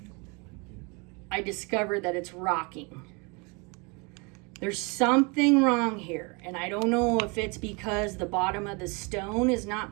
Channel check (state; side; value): quieter; left; 30.8 dB